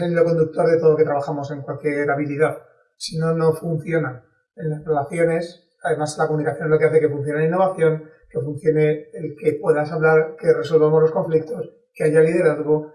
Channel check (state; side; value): identical; both; correlation 1.00